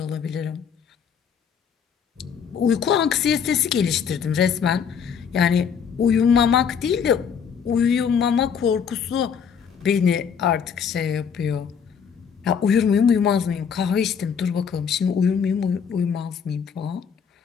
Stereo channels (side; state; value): right; quieter; 7.1 dB